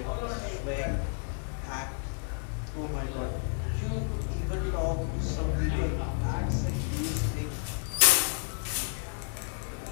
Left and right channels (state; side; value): silent; right; 57 dB below the other